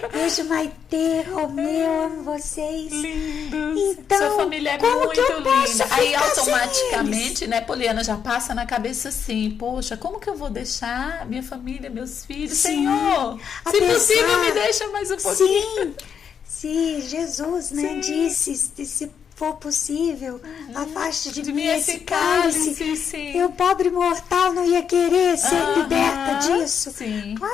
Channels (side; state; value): right; quieter; 7.4 dB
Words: Beijo, Maitê, Romeu, amo vocês. Lindos. Então, sua família é como muito que eu linda. Aí, automaticamente, né, Poliana, já passa na cabeça assim, poxa, como que eu vou deixar minha família, meus filhos? Sim. Senhor, se possível, me deixa mais um pouquinho. Sim. Se Jesus, né, disse, se for possível, afaste de mim esse cálice. Sim. Eu, pobre mortal, não ia querer ser liberta disso? Sim.